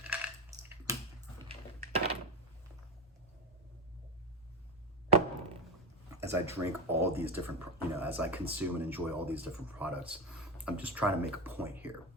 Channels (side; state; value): both; normal; correlation 0.17